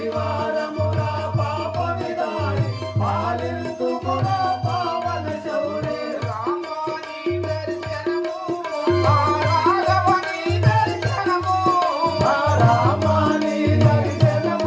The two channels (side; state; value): both; identical; correlation 1.00